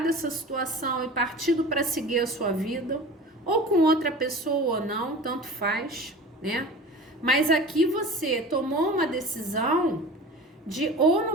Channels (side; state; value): both; normal; correlation 0.37